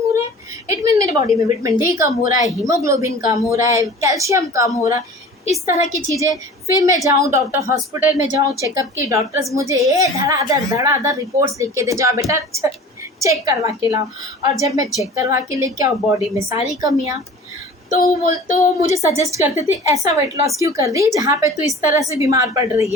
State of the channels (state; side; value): normal; both; correlation 0.41